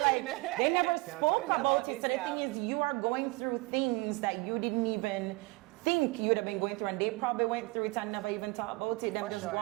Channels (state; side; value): quieter; left; 24.9 dB